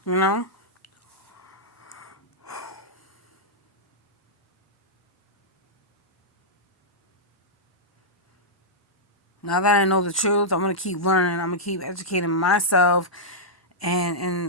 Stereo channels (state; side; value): normal; both; correlation -0.11